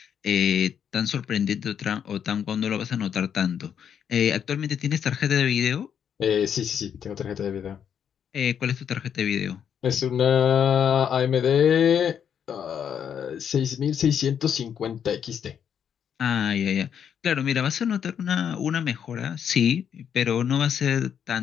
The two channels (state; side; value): quieter; right; 8.3 dB